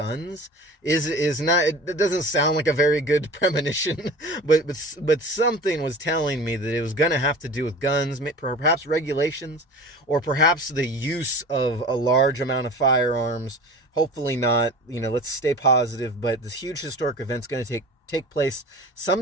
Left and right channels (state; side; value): normal; both; correlation 0.37